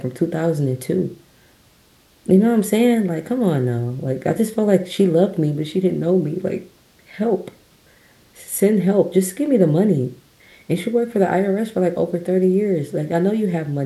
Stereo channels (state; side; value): identical; both; correlation 1.00